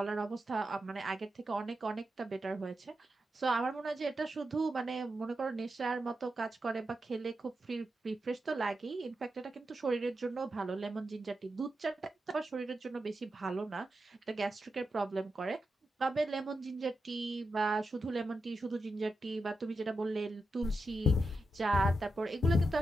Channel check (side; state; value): both; normal; correlation 0.88